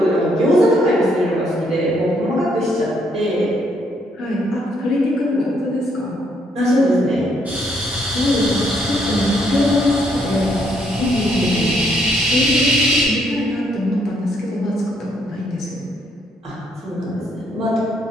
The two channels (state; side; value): normal; both; correlation 0.71